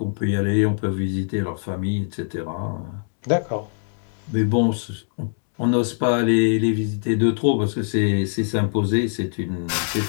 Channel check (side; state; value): right; silent; digital silence